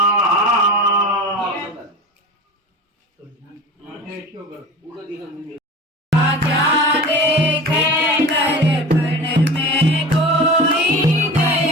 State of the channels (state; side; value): normal; both; correlation 0.34